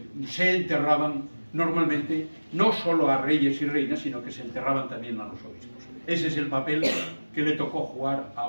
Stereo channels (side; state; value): both; inverted; correlation -1.00